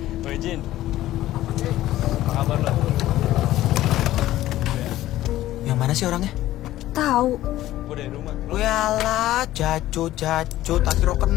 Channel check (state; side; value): quieter; right; 14.7 dB